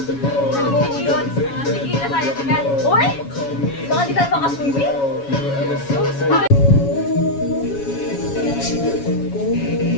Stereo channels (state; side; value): late; right; 7.2 ms